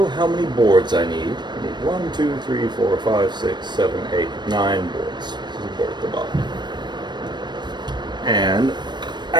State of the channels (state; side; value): late; left; 0.22 ms